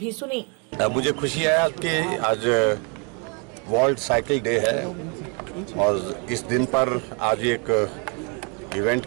सुनी। मुझे खुशी है कि आज वर्ल्ड साइकिल डे है और इस दिन पर आज एक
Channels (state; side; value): quieter; left; 34.0 dB